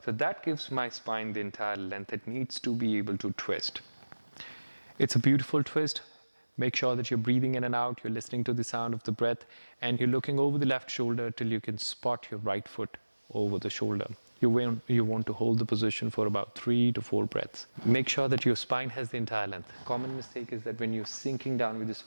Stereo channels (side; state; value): both; inverted; correlation -1.00